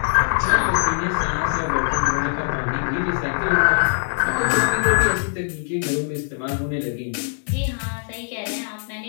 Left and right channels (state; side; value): silent; right; digital silence